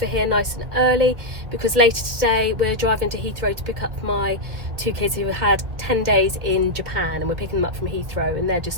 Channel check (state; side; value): late; left; 1.9 ms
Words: here nice and early because later today we're driving to Heathrow to pick up my two kids who had 10 days in Japan, and we're picking them up from Heathrow, and they're